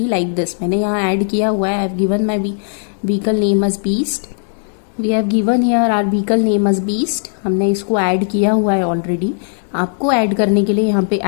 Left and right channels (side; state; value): right; silent; digital silence